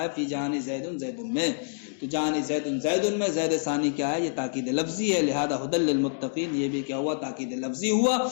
ہے، فی جان زید زید میں، تو جان زید میں زید ثانی کیا ہے؟ یہ تاکید لفظی ہے، لہذا ھدی للمتقین یہ بھی کیا ہوا؟ تاکید لفظی ہوا۔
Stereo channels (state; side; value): silent; right; digital silence